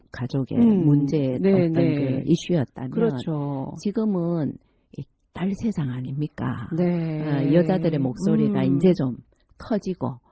가족의 문제의 네, 어떤 네. 그 이슈였다면 그렇죠. 지금은 이 딸 세상 아닙니까? 네. 여자들의 목소리가 이제 좀 커지고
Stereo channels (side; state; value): both; identical; correlation 1.00